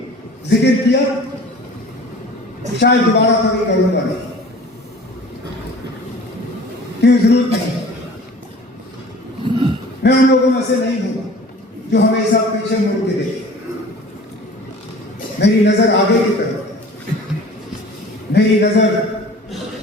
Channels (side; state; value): both; normal; correlation 0.45